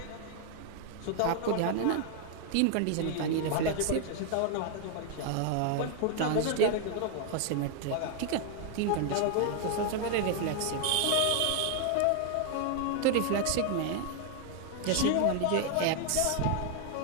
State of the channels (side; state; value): both; different; correlation 0.00